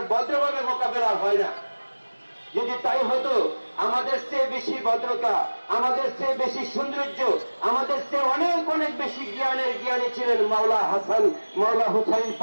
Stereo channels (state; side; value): inverted; both; correlation -1.00